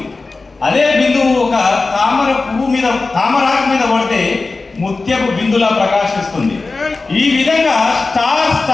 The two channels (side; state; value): right; quieter; 3.7 dB